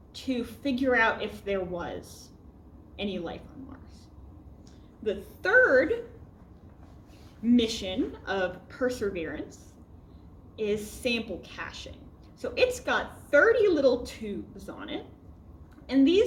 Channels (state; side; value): identical; both; correlation 1.00